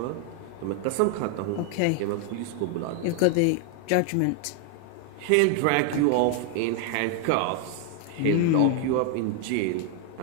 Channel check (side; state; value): both; different; correlation 0.00